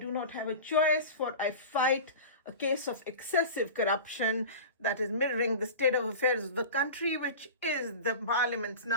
not have a choice, for I fight a case of excessive corruption that is mirroring the state of affairs of the country, which is the Parliament's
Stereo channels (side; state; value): both; inverted; correlation -0.33